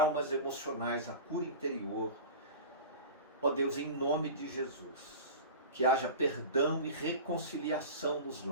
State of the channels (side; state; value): both; inverted; correlation -0.32